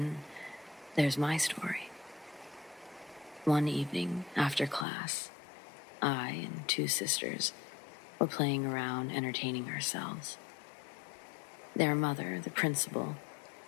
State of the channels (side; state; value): right; drops out; at 4.9 s